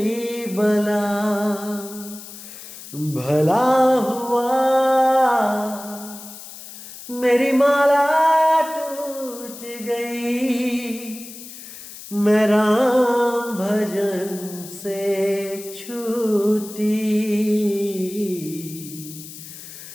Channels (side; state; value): left; noise; hiss, 14 dB below the sound